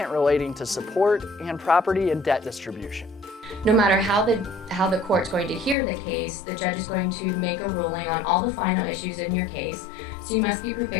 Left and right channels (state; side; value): drops out; right; at 5.8 s